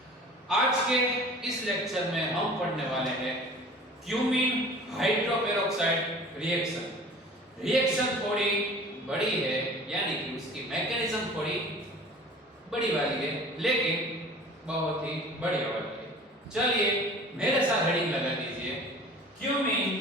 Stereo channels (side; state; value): both; normal; correlation 0.44